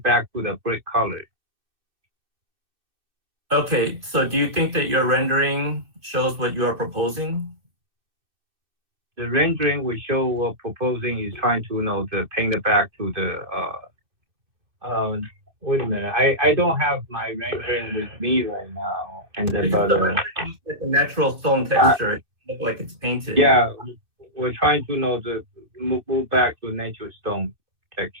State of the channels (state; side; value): late; left; 2.6 ms